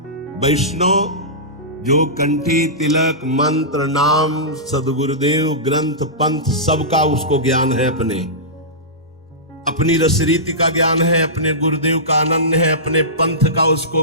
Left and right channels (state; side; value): normal; both; correlation -0.17